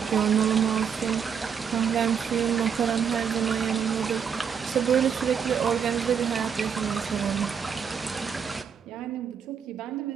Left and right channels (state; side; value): quieter; left; 7.2 dB